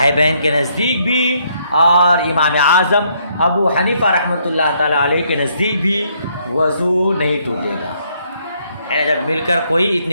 کے نزدیک بھی اور امام اعظم ابو حنیفہ رحمۃ اللہ تعالی علیہ کے نزدیک بھی وضو نہیں ٹوٹے گا۔ جب مل کر کوئی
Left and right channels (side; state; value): both; inverted; correlation -0.70